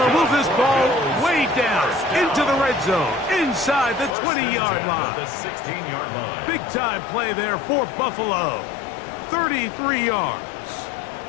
move this ball way down into the red zone, inside the 20-yard line. The 16-yard line. Big-time play there for Buffalo. 33 yards.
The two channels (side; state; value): right; drops out; at 4.2 s